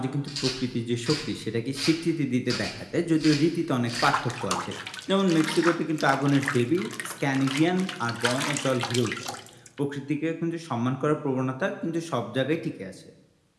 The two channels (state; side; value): identical; both; correlation 1.00